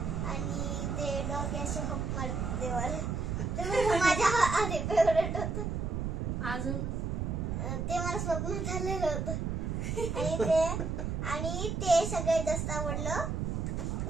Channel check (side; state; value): right; noise; rumble, 1 dB below the sound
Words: आणि ते डॉगी असे हप मारते मला, ते माझ्या आधी फेवरेट होतं. अजून ते मला स्वप्न झालेलं होतं. आणि ते आणि ते सगळ्यात जास्त आवडलं.